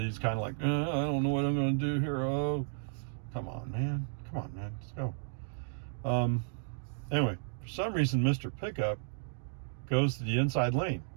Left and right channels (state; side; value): silent; left; digital silence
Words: kind of like, I don't know what I'm going to do here. Oh, come on, man. Let's go. Anyway, for some reason, Mr. Pickup goes to the inside lane,